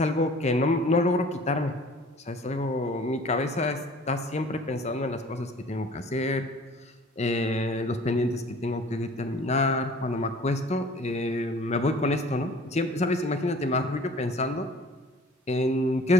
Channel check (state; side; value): normal; both; correlation 0.48